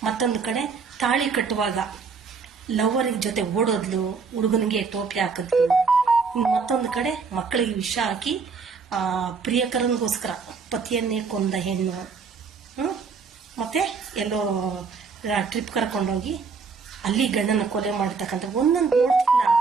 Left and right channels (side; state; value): left; quieter; 5.1 dB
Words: ಮತ್ತೊಂದು ಕಡೆ ತಾಳಿ ಕಟ್ಟುವಾಗ ಲವರಿಗೆ ಜೊತೆ ಓಡೋದ್ಲು, ಹುಡುಗನಿಗೆ ಟೋಪಿ ಹಾಕಿದ್ಲು, ಮತ್ತೊಂದು ಕಡೆ ಮಕ್ಕಳಿಗೆ ವಿಷ ಹಾಕಿ ಪ್ರಿಯಕರನಿಗೋಸ್ಕರ ಪತಿಯನ್ನೇ ಕೊಂದ ಹೆಣ್ಣು. ಮತ್ತೆ ಎಲ್ಲೋ ಟ್ರಿಪ್ ಕರ್ಕೊಂಡೋಗಿ ಅಲ್ಲಿ ಗಂಡನ ಕೊಲೆ ಮಾಡತಕ್ಕಂಥ ಒಂದೊಂದು ನೋಡ್ತಿಲ್ಲ